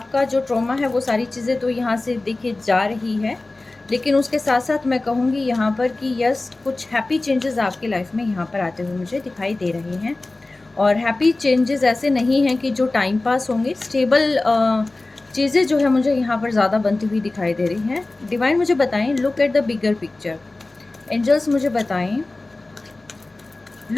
जो ट्रॉमा है वो सारी चीज़ें तो यहाँ से देखिए जा रही है, लेकिन उसके साथ साथ मैं कहूँगी यहाँ पर कि यस, कुछ हैप्पी चेंजेस आपकी लाइफ में यहाँ पर आते हुए मुझे दिखाई दे रहे हैं। और हैप्पी चेंजेस ऐसे नहीं हैं कि जो टाइम पास होंगे, स्टेबल चीज़ें जो है मुझे यहाँ पर ज़्यादा बनती हुई दिखाई दे रही हैं। डिवाइन मुझे बताएं, look at the bigger picture. Angels मुझे बताएं,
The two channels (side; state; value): right; quieter; 3.1 dB